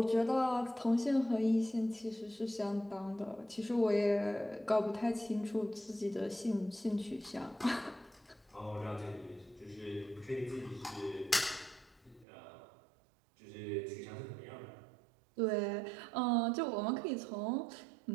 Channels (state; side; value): drops out; left; at 12.2 s